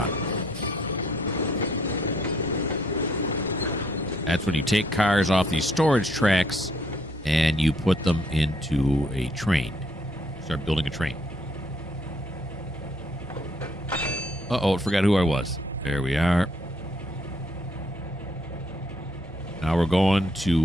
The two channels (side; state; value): both; normal; correlation 0.68